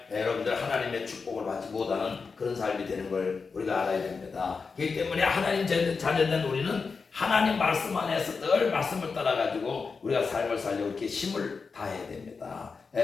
여러분들 하나님의 축복을 받지 못하는 그런 삶이 되는 걸 우리가 알아야 됩니다. 그렇기 때문에 하나님 자녀된 우리는 하나님 말씀 안에서 늘 말씀을 따라가지고 우리가 삶을 살려고 이렇게 힘을 다해야 됩니다.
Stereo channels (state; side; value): quieter; right; 4.9 dB